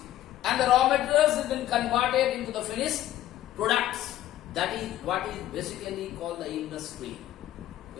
and the raw materials has been converted into the finished products. That is what is basically called the industry.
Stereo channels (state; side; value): quieter; right; 13.2 dB